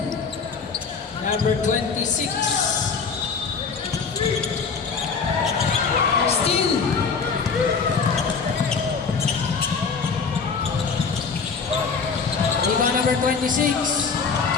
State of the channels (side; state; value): right; quieter; 5.4 dB